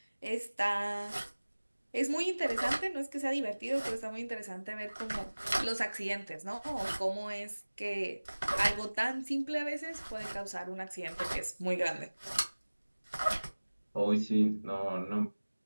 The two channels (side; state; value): both; inverted; correlation -1.00